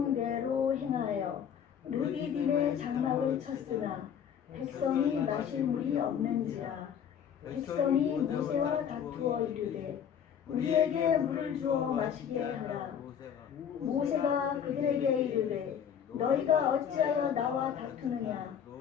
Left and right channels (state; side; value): quieter; right; 8.4 dB